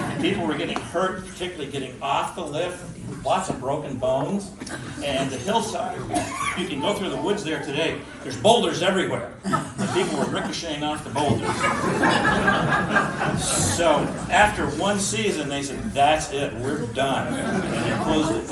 People were getting hurt, particularly getting off the lift, lots of broken bones. And the hillside, you can go through the woods there today, there's boulders everywhere. And people were ricocheting off the boulders. So after one season, they said, that's it, we're done. And they closed it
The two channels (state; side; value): identical; both; correlation 1.00